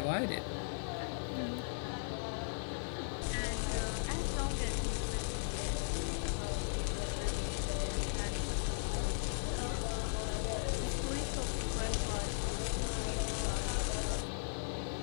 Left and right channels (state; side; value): silent; right; 53 dB below the other